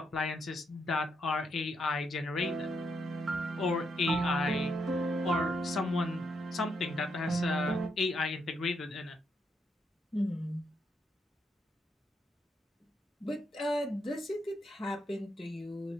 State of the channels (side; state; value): both; normal; correlation 0.78